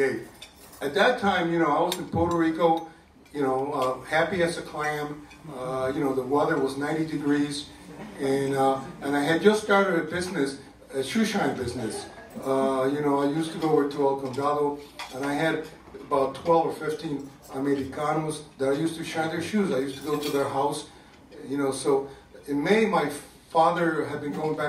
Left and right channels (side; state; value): both; identical; correlation 1.00